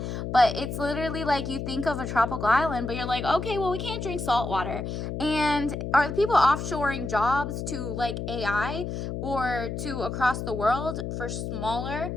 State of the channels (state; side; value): noise; left; hum, 4 dB below the sound